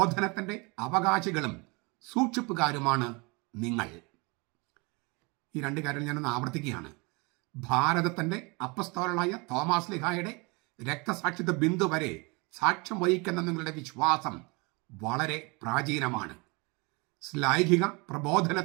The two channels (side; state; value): left; quieter; 28.5 dB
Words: അവകാശികളും സൂക്ഷിപ്പുകാരുമാണ് നിങ്ങൾ. ഈ 2 കാര്യങ്ങൾ ഞാനൊന്ന് ആവർത്തിക്കുകയാണ്. ഭാരതത്തിൻ്റെ അപ്പസ്തോലനായ തോമാസ് ലീഹായുടെ രക്തസാക്ഷിത്വ ബിന്ദു വരെ സാക്ഷ്യം വഹിക്കുന്ന നിങ്ങളുടെ വിശ്വാസം വളരെ പ്രാചീനമാണ്. ശ്ലൈഹിക